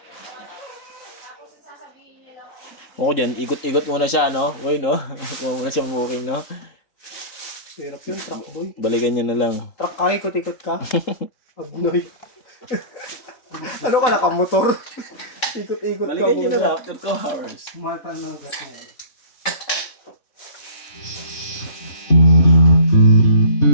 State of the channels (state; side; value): late; right; 3.8 ms